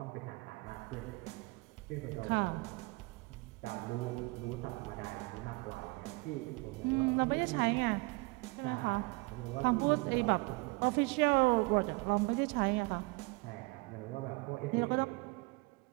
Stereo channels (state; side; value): quieter; left; 26.5 dB